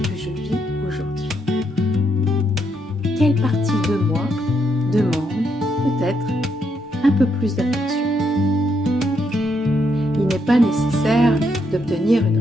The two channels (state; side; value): normal; both; correlation 0.77